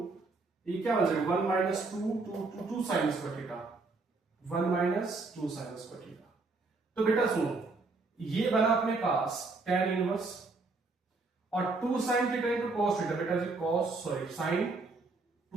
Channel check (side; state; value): left; quieter; 3.7 dB